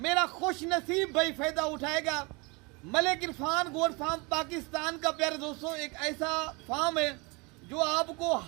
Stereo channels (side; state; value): left; quieter; 28.3 dB